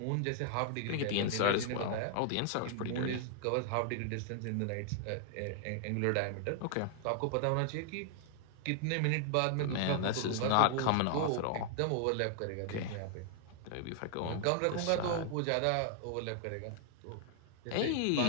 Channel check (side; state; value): both; different; correlation 0.00